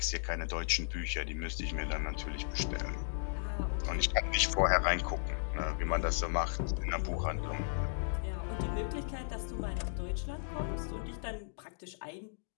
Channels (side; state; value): right; silent; digital silence